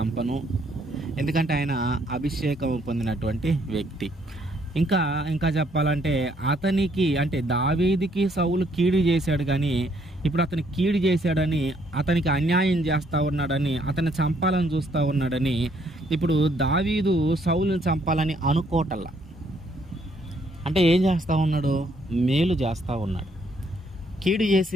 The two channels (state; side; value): normal; both; correlation 0.69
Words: ఎందుకంటే ఆయన అభిషేకం పొందినటువంటి వ్యక్తి. ఇంకా చెప్పాలంటే అతనికి అంటే దావీదుకి సౌలు కీడు చేశాడు, కానీ ఇప్పుడు అతను కీడు చేశాడని, అతనికి అన్యాయం చేస్తూ ఉన్నాడని, అతన్ని చంపాలని చూస్తూ ఉన్నాడని ఇప్పుడు దావీదు సౌలుని చంపాలని అనుకోవటల్లా. అంటే ఏం చేస్తూ ఉన్నాడు? మేలు చేస్తూ ఉన్నాడు. కీడు